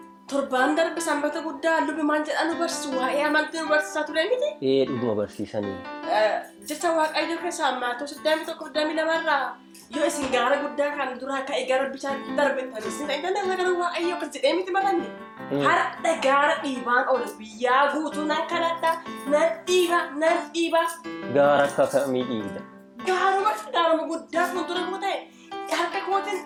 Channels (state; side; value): identical; both; correlation 1.00